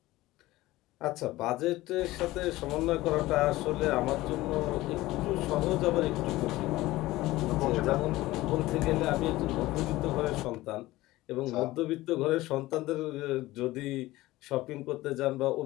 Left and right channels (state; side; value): quieter; right; 17.9 dB